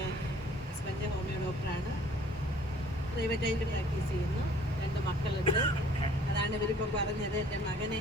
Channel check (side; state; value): both; normal; correlation 0.55